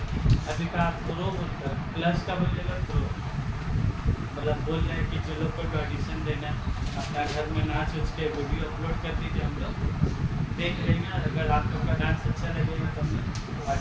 अभी का आप प्रो बोलता है प्लस का बोलिएगा प्रो मतलब बोल रहे हैं कि जो लोग को ऑडिशन देना अपना घर में नाच उच के वीडियो अपलोड कर दीजिए हम लोग देख लेंगे। अगर आप लोग का डांस अच्छा लगेगा तो हम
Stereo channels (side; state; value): both; identical; correlation 1.00